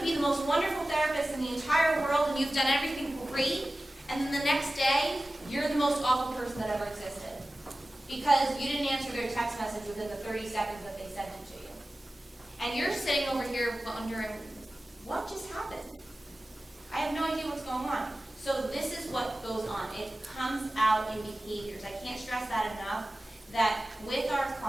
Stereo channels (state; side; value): normal; both; correlation 0.96